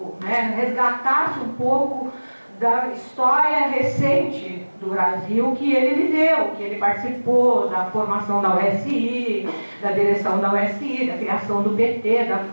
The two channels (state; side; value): inverted; both; correlation -1.00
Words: resgatasse um pouco da história recente do Brasil que ele viveu, que ele participou da formação da USI, da direção da USI, da criação do PT, da